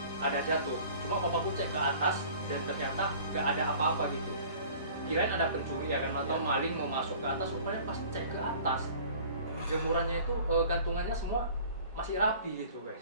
Ada jatuh. Cuma papaku cek ke atas dan ternyata gak ada apa-apa gitu. Kirain ada pencuri ya kan, atau maling mau masuk ke atas. Rupanya pas cek ke atas, jemurannya itu gantungannya semua masih rapi gitu guys.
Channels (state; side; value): inverted; both; correlation -0.47